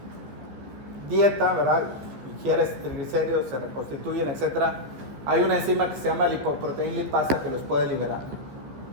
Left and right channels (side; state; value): left; late; 15 ms